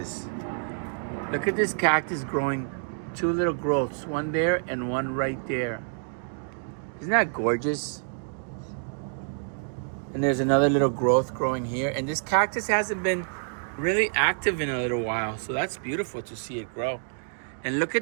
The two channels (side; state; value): left; silent; digital silence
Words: Look at this cactus growing two little growths, one there and one right there. Isn't that gorgeous? And there's another little growth growing here. And this cactus hasn't been really active in a little while. So that's beautiful to see it grow. And look at